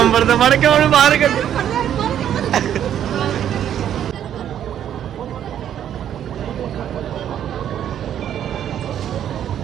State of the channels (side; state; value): left; quieter; 10.2 dB